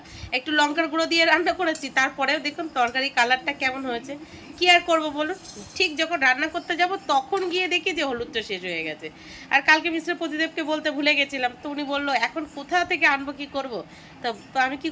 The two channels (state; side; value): identical; both; correlation 1.00